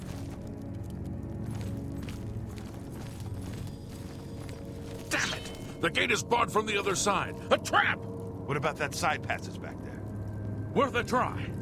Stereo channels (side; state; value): both; identical; correlation 1.00